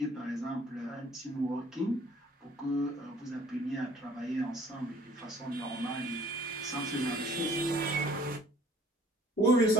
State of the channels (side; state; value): both; normal; correlation 0.55